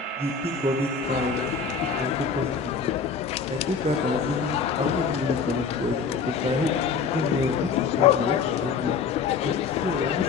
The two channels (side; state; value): right; quieter; 5.6 dB